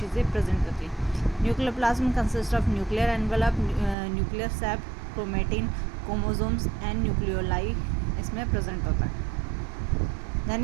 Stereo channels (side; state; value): left; drops out; at 4.0 s